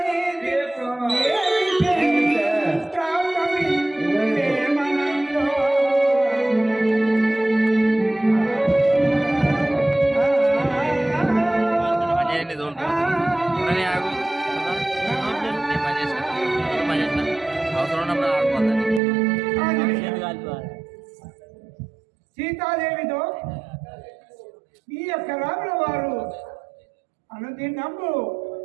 సీతాదేవితో ఈ యొక్క రాముల వారు అనుదినము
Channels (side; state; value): left; drops out; at 19.0 s